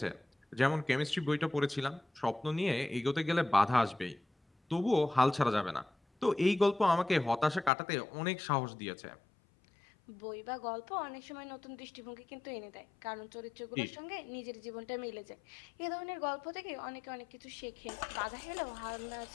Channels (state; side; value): drops out; right; at 7.7 s